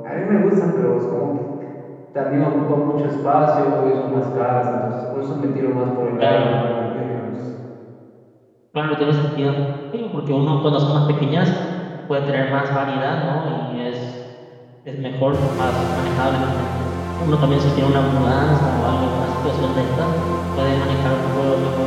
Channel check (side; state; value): both; identical; correlation 1.00